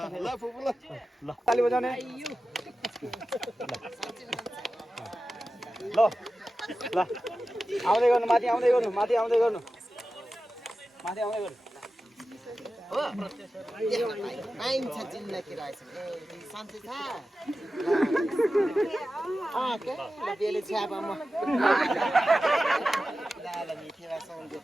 ल फुपु ल ताली बजाउने ल ल आउँदै गर्नु माथि आउँदै गर्नु माथि आउँदै गर्नु माथि आउँदै गर्नु हो पाइन्छ जिन्दगी रहेछ ए सन्चै छ के बेले छ्यापमा ल मिठेवा साउन्ड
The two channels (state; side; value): normal; both; correlation 0.93